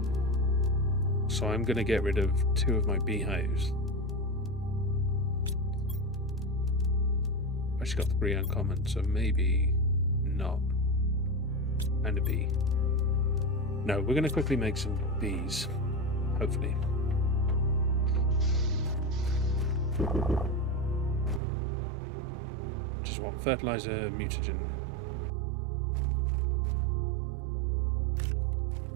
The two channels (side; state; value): left; drops out; at 21.4 s